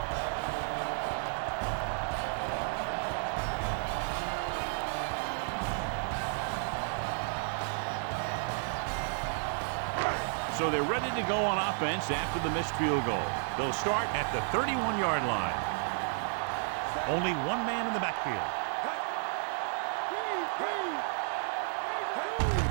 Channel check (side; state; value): left; silent; 56 dB below the other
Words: So they're ready to go on offense after the missed field goal. They'll start at the 31-yard line. Only one man in the backfield.